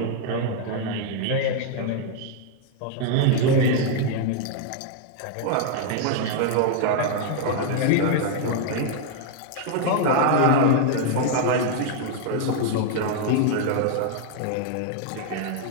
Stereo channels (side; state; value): both; different; correlation 0.00